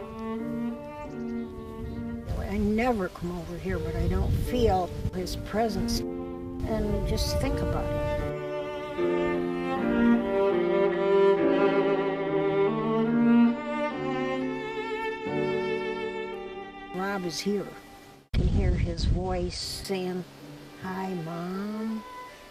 I never come over here, but I don't feel his presence. And just think about it. Rob is here. You can hear his voice saying, "Hi, Mom,"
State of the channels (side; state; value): both; identical; correlation 1.00